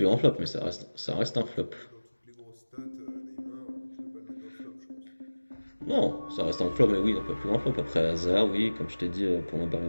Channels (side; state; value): both; inverted; correlation -1.00